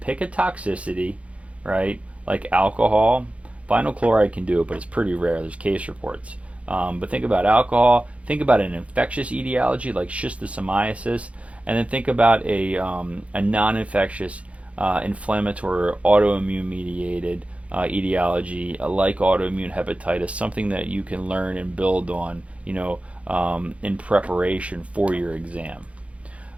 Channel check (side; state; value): left; late; 0.063 ms